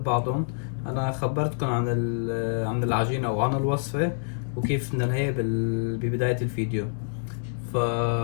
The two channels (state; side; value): silent; right; digital silence